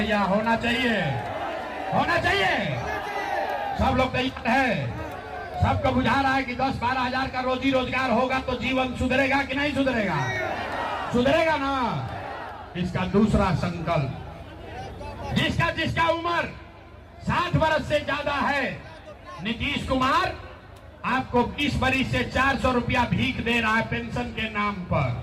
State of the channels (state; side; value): identical; both; correlation 1.00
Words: होना चाहिए, होना चाहिए। सब लोग तैयार है? सबको बुझा रहा है कि 10-12 हजार का रोजी रोजगार होगा तो जीवन सुधरेगा कि नहीं सुधरेगा? सुधरेगा ना। इसका दूसरा संकल्प, जिसका जिसका उम्र 60 वर्ष से ज्यादा है, नीतीश कुमार आपको 20 वर्ष से 400 रुपया भीख दे रहा है पेंशन के नाम पर।